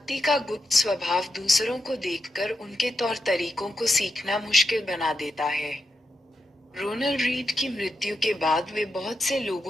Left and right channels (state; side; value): normal; both; correlation 0.86